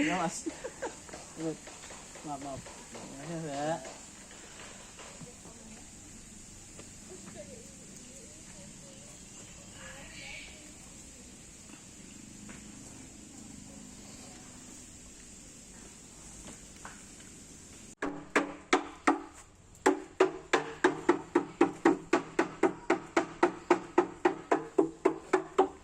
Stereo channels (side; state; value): both; identical; correlation 1.00